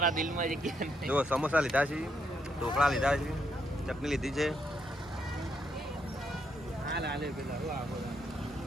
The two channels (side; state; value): both; normal; correlation 0.77